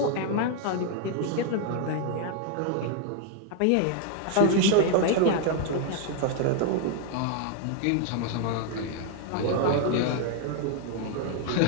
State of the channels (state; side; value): different; both; correlation 0.00